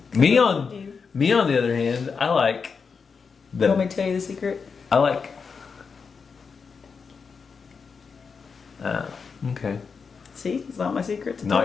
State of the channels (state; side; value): quieter; right; 5.5 dB